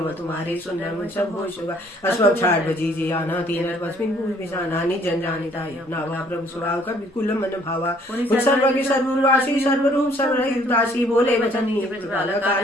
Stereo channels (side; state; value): both; normal; correlation 0.61